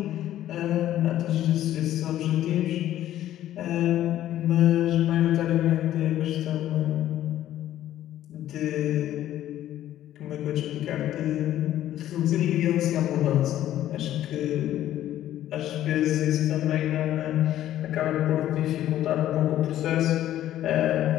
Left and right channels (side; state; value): right; quieter; 12.7 dB